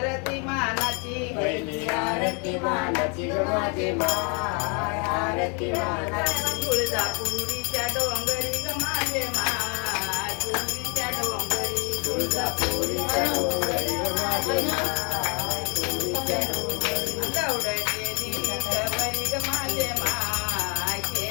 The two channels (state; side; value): quieter; right; 35.3 dB